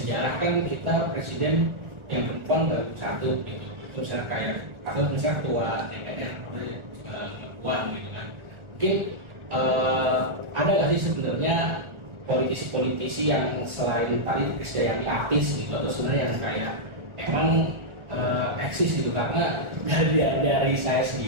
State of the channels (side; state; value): left; late; 1.4 ms